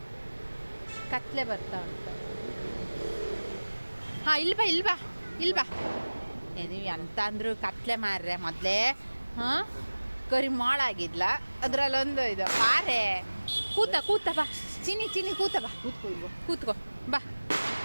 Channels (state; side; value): inverted; both; correlation -1.00